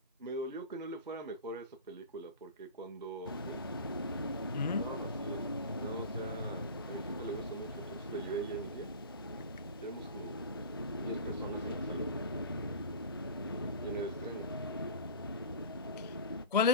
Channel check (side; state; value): both; inverted; correlation -0.35